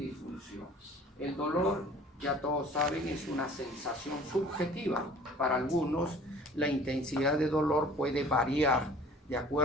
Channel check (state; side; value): normal; both; correlation 0.49